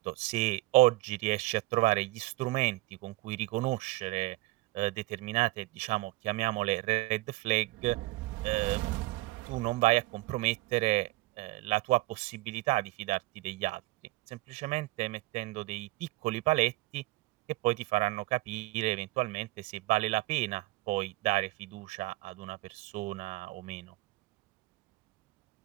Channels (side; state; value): left; quieter; 20.2 dB